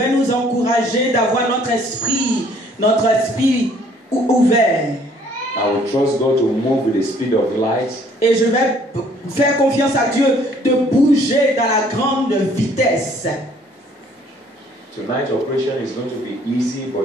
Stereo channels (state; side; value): normal; both; correlation 0.60